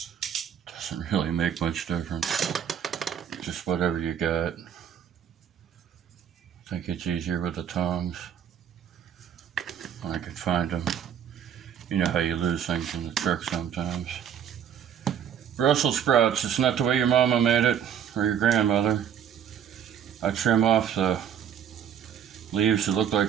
Doesn't really make much difference. Just whatever you got. I think it's easier with the tongs. I could find them. You know how you lose things in the truck sometimes. Brussels sprouts, it's not the way your mama made it, or your grandmother. I trim off the leaves that look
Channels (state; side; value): quieter; left; 8.8 dB